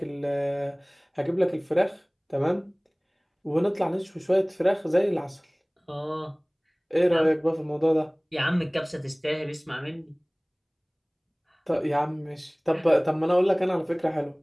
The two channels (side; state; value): both; identical; correlation 1.00